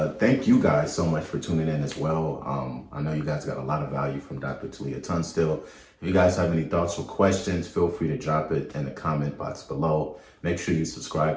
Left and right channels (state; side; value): identical; both; correlation 1.00